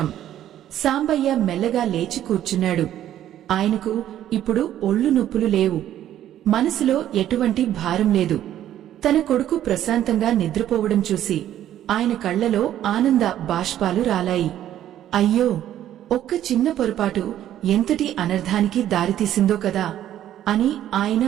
సాంబయ్య మెల్లగా లేచి కూర్చున్నాడు. ఆయనకు ఇప్పుడు ఒళ్ళు నొప్పులు లేవు. మనసులో ఎటువంటి భారం లేదు. తన కొడుకు ప్రశాంతంగా నిద్రపోవడం చూసి ఆయన కళ్లలో ఆనంద బాష్పాలు రాలాయి. అయ్యో, ఒక్క చిన్న పొరపాటు ఎంతటి అనర్థానికి దారితీసిందో కదా అని ఆయన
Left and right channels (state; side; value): quieter; left; 11.8 dB